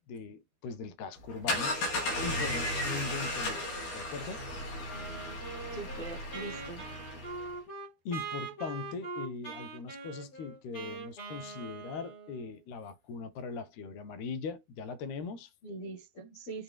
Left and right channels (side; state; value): right; late; 12 ms